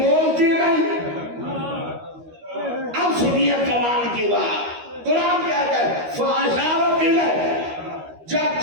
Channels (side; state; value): left; late; 13 ms